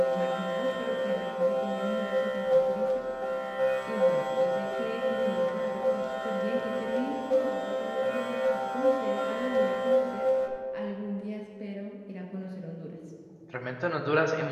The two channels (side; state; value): both; identical; correlation 1.00